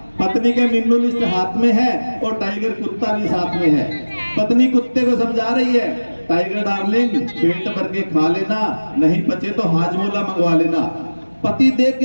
पत्नी के मेनू लिस्ट हाथ में है और टाइगर कुत्ता भी साथ में है। पत्नी कुत्ते को समझा रही है, टाइगर डार्लिंग पेट भर के खा लेना, नहीं बचे तो हाजमोला मंगवा लेना। पति देख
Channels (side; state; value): both; inverted; correlation -1.00